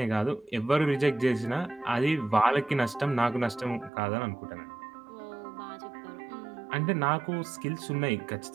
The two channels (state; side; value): drops out; left; at 3.9 s